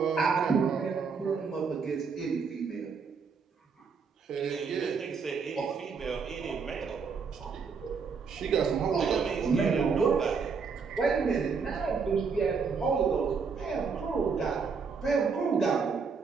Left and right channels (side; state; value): left; quieter; 5.4 dB